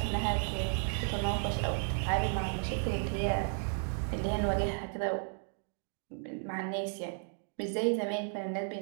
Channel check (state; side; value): silent; left; 55 dB below the other